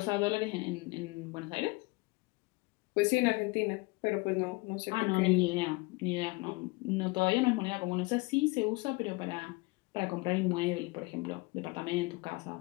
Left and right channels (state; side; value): quieter; right; 25.3 dB